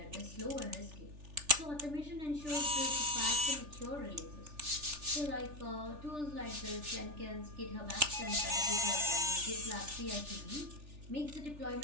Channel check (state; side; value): late; left; 3.4 ms